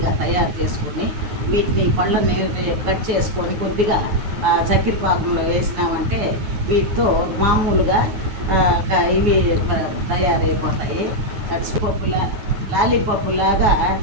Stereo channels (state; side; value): late; left; 9.4 ms